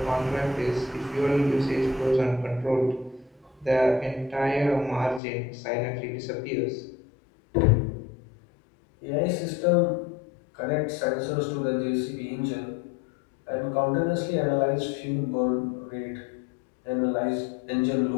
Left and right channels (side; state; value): right; drops out; at 5.2 s